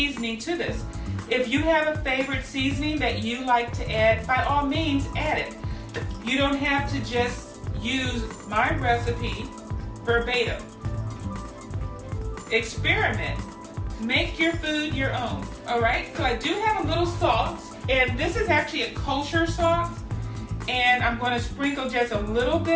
to this. If you have a favorite seasoning that you like to add, by all means add it. You don't have to just use my recipe verbatim. Experiment. Make your food your own. Alright, so I do have a little salt, and this is actually a kosher salt, and I'm going to sprinkle just a little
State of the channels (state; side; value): identical; both; correlation 1.00